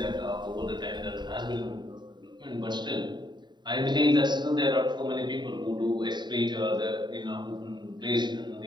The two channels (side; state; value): left; late; 0.21 ms